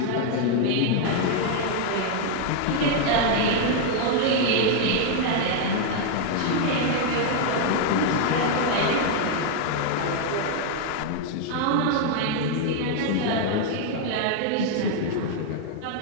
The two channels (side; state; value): both; different; correlation 0.00